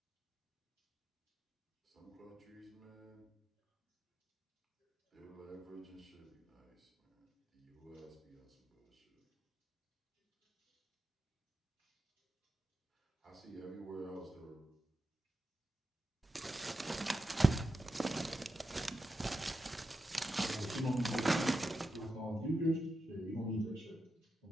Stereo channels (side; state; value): both; normal; correlation 0.89